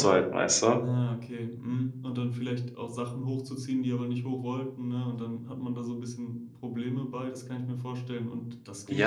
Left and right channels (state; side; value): identical; both; correlation 1.00